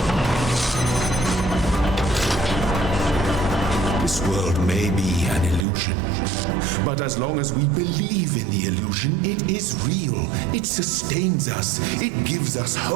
This world may be an illusion, but as long as we believe in the illusion, it is real. It sustains us. It gives us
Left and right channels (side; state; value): left; drops out; at 5.7 s